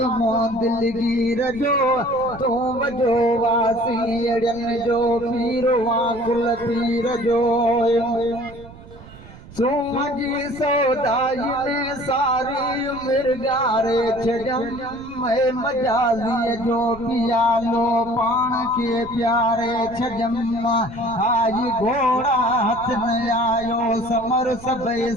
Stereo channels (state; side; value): noise; right; rumble, 19 dB below the sound